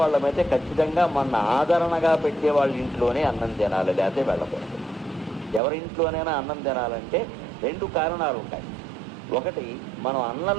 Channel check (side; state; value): left; drops out; at 5.6 s